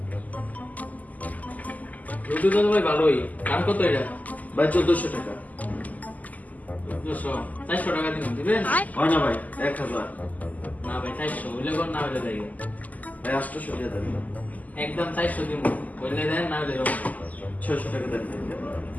ব্লুটুথ তো ভাই ভালোই। দাম কত এটা? ভাই 1400 টাকা। 400 টাকা দিবেন? হয় না ভাই, 1000। না ভাই 400 হইলে কোন না হইলে যাই। ভাই 800 টাকা দেন। একদম 400 দিব। হইলে দেন না হইলে 600 টাকা দেন।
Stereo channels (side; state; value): right; late; 0.078 ms